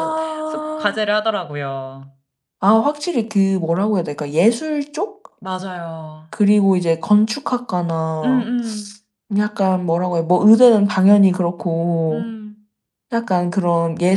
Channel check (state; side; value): identical; both; correlation 1.00